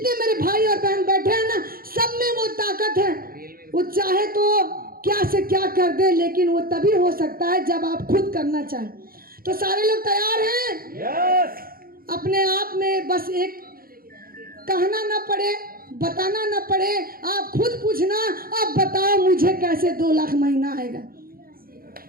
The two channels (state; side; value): late; left; 0.42 ms